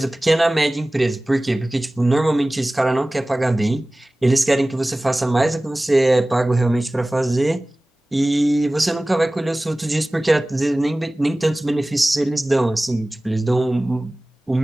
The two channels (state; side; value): normal; both; correlation 0.98